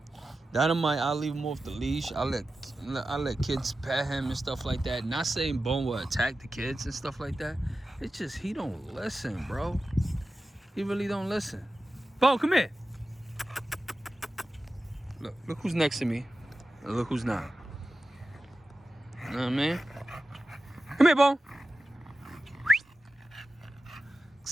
Dynamite, I'll leave him off the leash. I let kids pet him and stuff like that. Not saying Bone will attack the kids and stuff like that. It's just he don't listen, bro. He really don't listen. Bone, come here. Look who's next to me. And look who's not. You know what I mean? Come here, Bone.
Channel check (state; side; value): normal; both; correlation 0.94